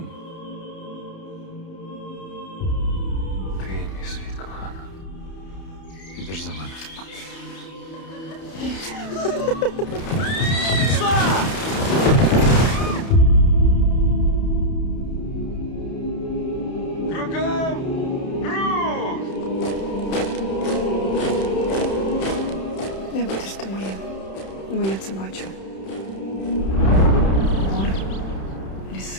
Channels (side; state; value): right; late; 31 ms